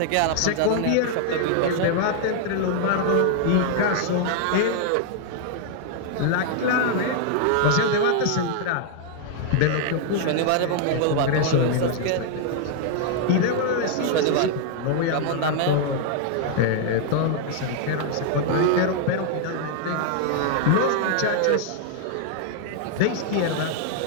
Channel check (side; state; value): both; different; correlation 0.00